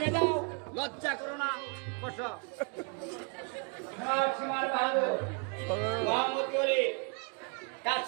যাও, লজ্জা করো না, বসো। সীমার বাহাদুর মোহাম্মদ আলী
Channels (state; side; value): quieter; left; 36.5 dB